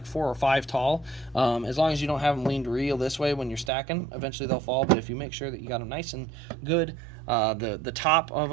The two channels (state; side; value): drops out; left; at 3.7 s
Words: 4 or 5 tall. As long as you don't have them leaned real this way when you're stacking, eventually they'll fall. But if you make sure that you got them nice and good, the top of